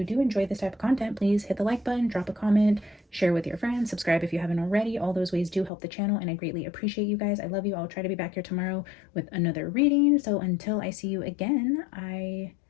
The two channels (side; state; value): right; drops out; at 5.7 s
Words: do enjoy this type of content, please hit the like button, drop a comment, share with your friends, subscribe if you haven't already. All those ways do help the channel, and I greatly appreciate you guys. I love you. I'll try to be back here tomorrow with another reading. So until I see you again, I